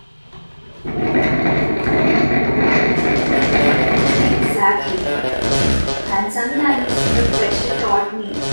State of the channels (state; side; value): inverted; both; correlation -1.00